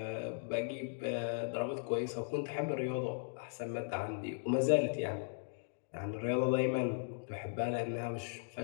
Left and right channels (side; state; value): right; silent; digital silence